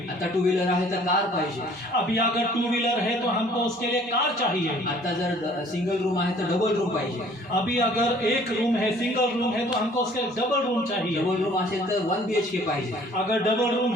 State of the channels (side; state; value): both; normal; correlation 0.55